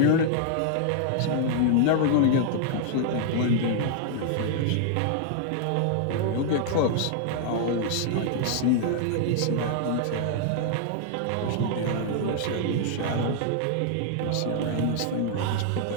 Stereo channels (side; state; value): both; different; correlation 0.00